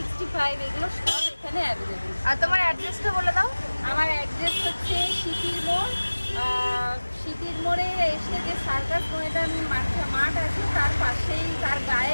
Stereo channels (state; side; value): inverted; both; correlation -1.00